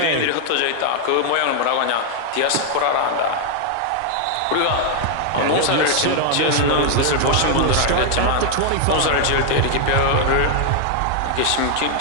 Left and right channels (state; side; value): different; both; correlation 0.00